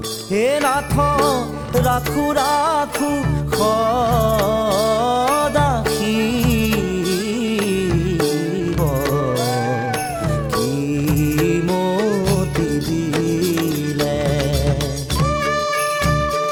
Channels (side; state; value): both; identical; correlation 1.00